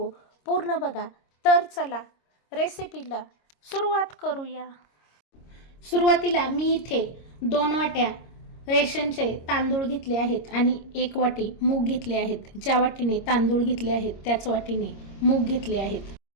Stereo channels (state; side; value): late; right; 26 ms